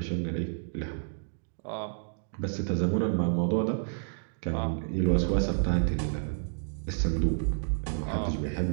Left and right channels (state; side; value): silent; left; digital silence